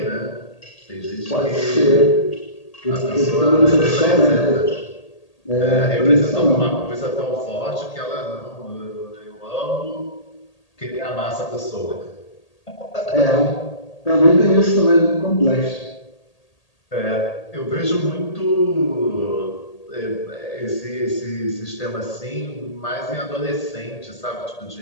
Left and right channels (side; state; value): right; late; 1.8 ms